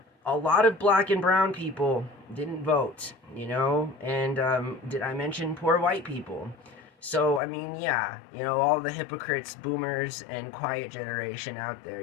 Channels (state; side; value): drops out; right; at 7.4 s